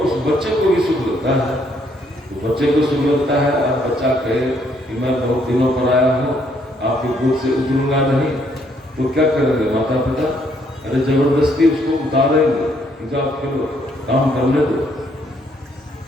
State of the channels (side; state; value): both; normal; correlation 0.69